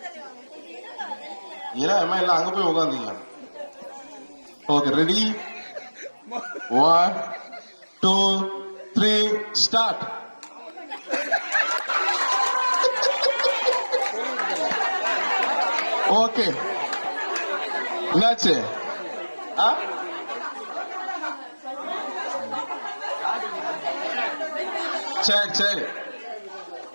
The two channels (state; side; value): inverted; both; correlation -1.00